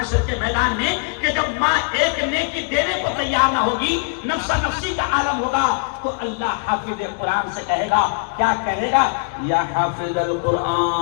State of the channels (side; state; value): right; quieter; 34.7 dB